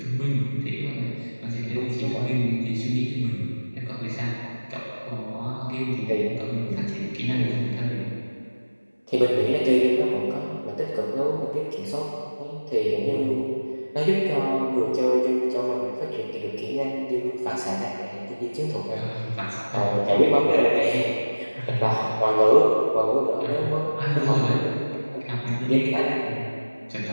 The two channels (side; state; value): both; inverted; correlation -1.00